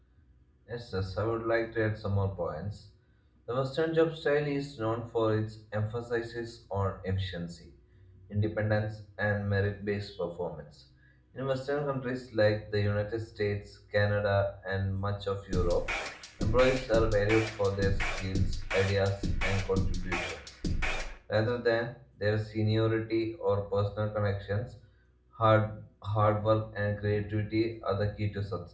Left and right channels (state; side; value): identical; both; correlation 1.00